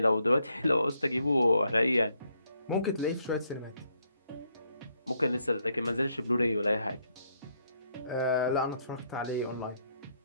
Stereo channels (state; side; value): inverted; both; correlation -0.74